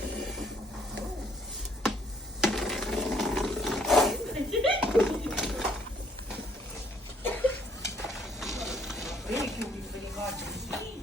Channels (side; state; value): both; normal; correlation 0.64